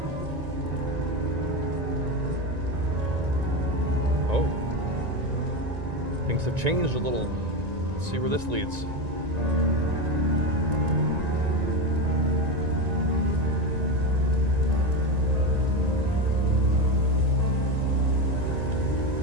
Oh. Things have changed a little. Let's see where this leads.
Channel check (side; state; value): left; late; 1.9 ms